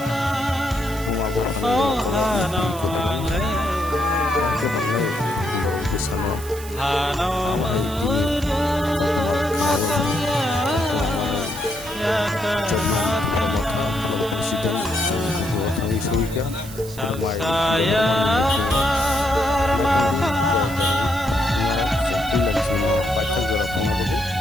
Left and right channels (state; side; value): noise; right; hiss, 15 dB below the sound